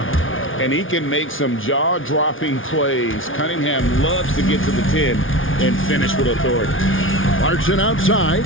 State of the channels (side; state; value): right; late; 0.57 ms